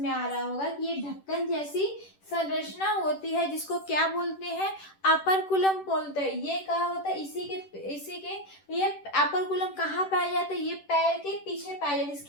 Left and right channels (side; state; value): right; late; 10 ms